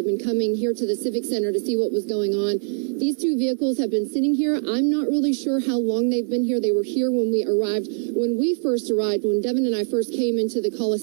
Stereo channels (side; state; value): left; silent; 58 dB below the other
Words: been coming here to the Civic Center to see what was going on. These two vehicles have been sitting here. I'm not really sure how long they've been here. They were here when we arrived. When we first arrived, when Devin and I first came into the